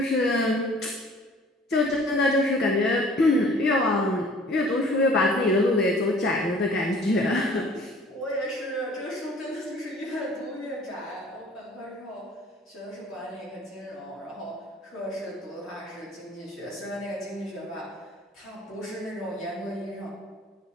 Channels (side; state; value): both; normal; correlation 0.51